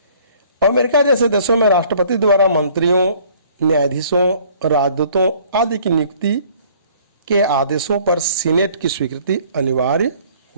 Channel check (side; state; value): both; inverted; correlation -0.56